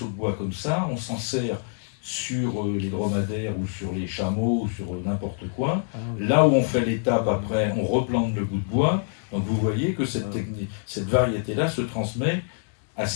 de bois comme ça, on s'en sert sur les dromadaires ou sur les chameaux ou sur n'importe quoi. Là où on fait l'étape après, on replante le bout de bois. Donc vous voyez que cette variété-là se transmet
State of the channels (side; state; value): right; silent; 61 dB below the other